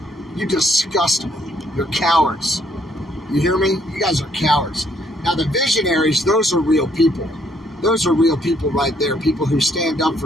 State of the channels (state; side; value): normal; both; correlation 0.68